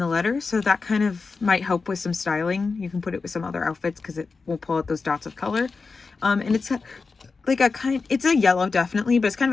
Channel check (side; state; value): right; quieter; 4.4 dB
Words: letter, so that kind of might help with some styling. You can put it with some other outfits because it will pull out those dots of color. And it's like it's a yellow definitely, but it's kind